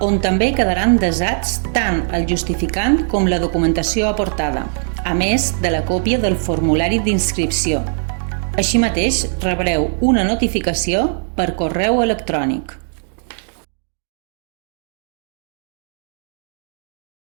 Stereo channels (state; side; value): silent; left; digital silence